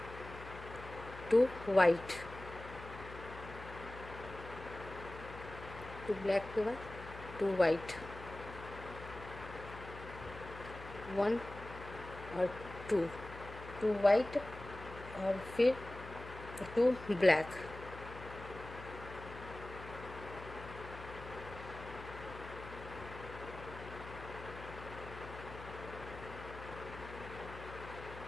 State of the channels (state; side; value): noise; left; hum, 12 dB below the sound